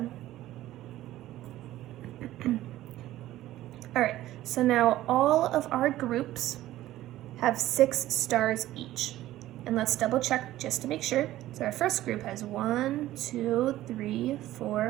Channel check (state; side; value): quieter; left; 14.8 dB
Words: Alright, so now all of our groups have 6 stars each. And let's double check just to make sure. So our first group has 1, 2, 3, 4,